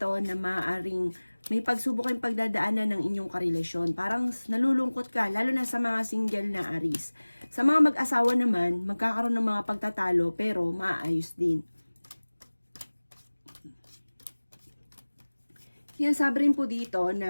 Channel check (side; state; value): both; inverted; correlation -1.00